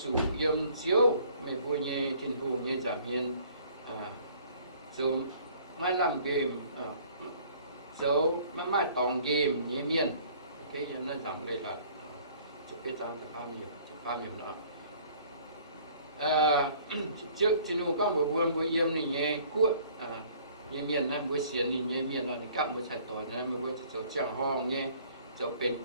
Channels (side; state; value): both; inverted; correlation -0.55